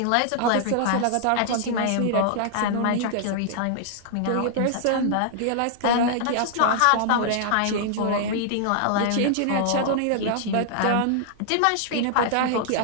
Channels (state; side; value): different; both; correlation -0.01